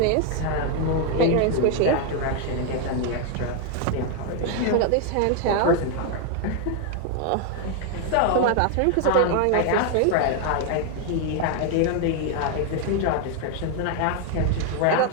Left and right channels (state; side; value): different; both; correlation 0.00